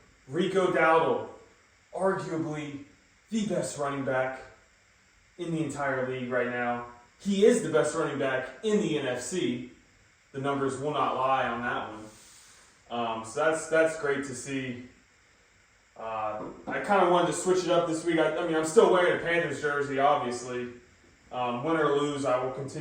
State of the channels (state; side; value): identical; both; correlation 1.00